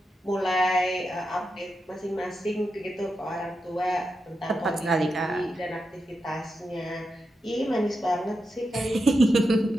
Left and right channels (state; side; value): normal; both; correlation 0.88